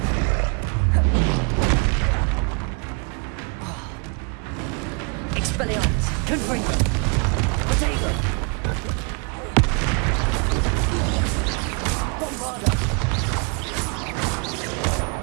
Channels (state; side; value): quieter; left; 36.7 dB